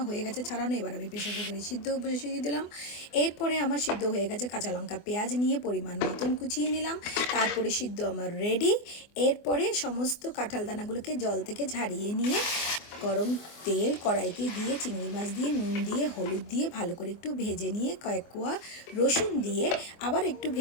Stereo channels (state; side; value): late; right; 24 ms